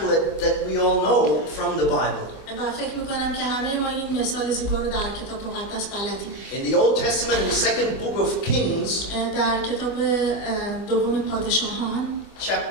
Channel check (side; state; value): right; late; 25 ms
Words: that we all know from the Bible. و فکر میکنم که همه ما این مثال زیبا رو در کتاب مقدس بلدیم. In the Old Testament, in the second book of Kings, در کتاب دوم پادشاهان,